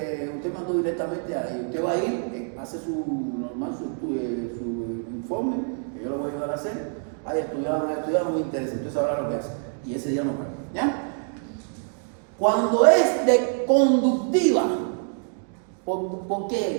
usted mandó directamente ahí. Usted va a ir, hace su informe, que yo lo voy a ayudar a hacer. Hay estudiado, no me interesa, usted sabrá lo que hace. Y ese día no paga. ¿Ya? Cuando es de conductiva, ¿por qué?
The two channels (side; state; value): left; silent; 60 dB below the other